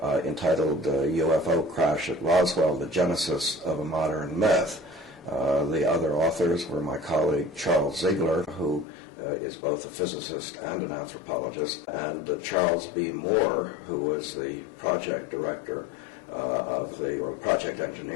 entitled UFO Crash at Roswell, The Genesis of a Modern Myth. The other authors were my colleague Charles Ziegler, who is both a physicist and an anthropologist, and Charles B. Moore, who was the project director or project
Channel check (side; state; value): right; drops out; at 8.8 s